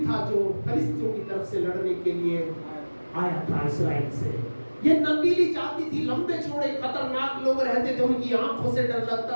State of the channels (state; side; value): inverted; both; correlation -1.00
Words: था जो फिलिस्तीनियों की तरफ से लड़ने के लिए आया था इस्राएल से। ये नबीली जाति थी, लंबे चौड़े खतरनाक लोग रहते थे, उनकी आंखों से डर